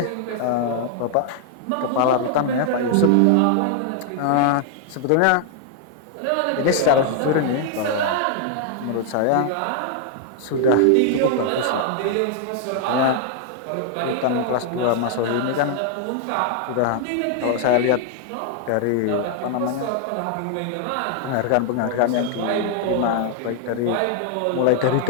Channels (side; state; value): both; different; correlation 0.00